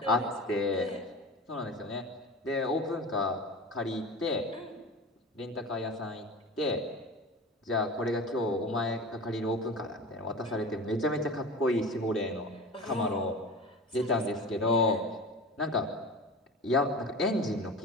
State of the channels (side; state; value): both; normal; correlation 0.33